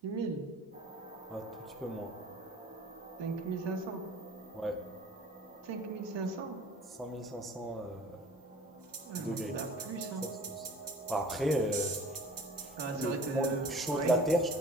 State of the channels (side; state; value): both; normal; correlation 0.46